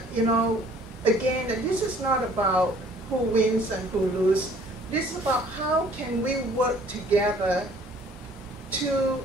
again, this is not about who wins and who loses. This is about how can we work together to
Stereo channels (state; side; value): normal; both; correlation 0.55